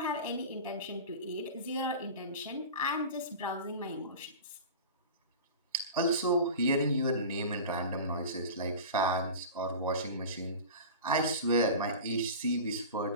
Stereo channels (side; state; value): both; inverted; correlation -0.33